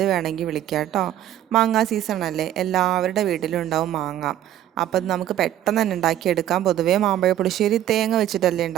വേണമെങ്കിൽ വിളിക്കാം കേട്ടോ. മാങ്ങ സീസണല്ലേ, എല്ലാവരുടെ വീട്ടിലും ഉണ്ടാവും മാങ്ങ. അപ്പം നമുക്ക് പെട്ടെന്ന് തന്നെ ഉണ്ടാക്കിയെടുക്കാം. പൊതുവേ മാമ്പഴ പുളിശ്ശേരി തേങ്ങ വെച്ചിട്ടല്ലേ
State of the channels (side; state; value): left; quieter; 12.1 dB